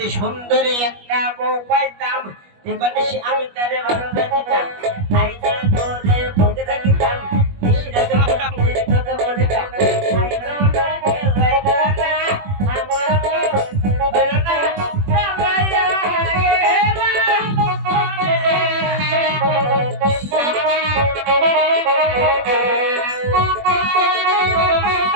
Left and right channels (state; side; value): late; left; 21 ms